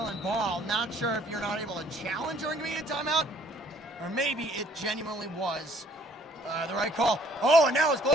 ball. Not sure if you're not able to challenge during media timeout, or maybe it genuinely was the right call. Oh, and now it's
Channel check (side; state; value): both; normal; correlation 0.60